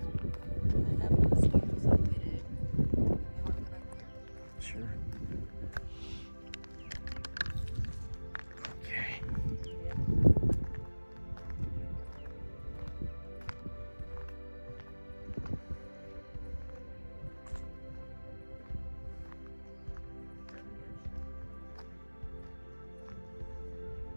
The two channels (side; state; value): both; inverted; correlation -1.00